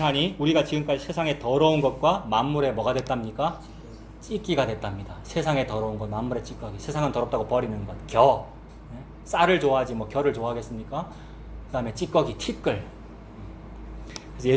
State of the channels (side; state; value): both; identical; correlation 1.00